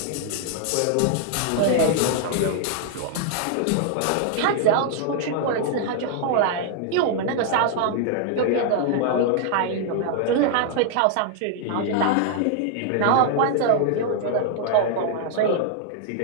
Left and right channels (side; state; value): both; different; correlation 0.00